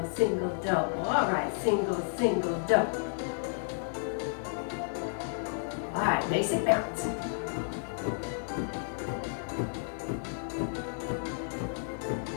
single, double. All right, single, single, double. All right, basic bounce.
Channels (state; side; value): silent; right; digital silence